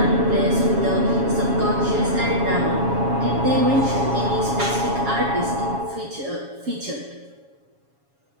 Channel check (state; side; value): late; left; 7.2 ms